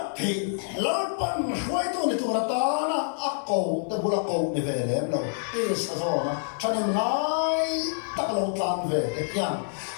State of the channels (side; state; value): right; silent; digital silence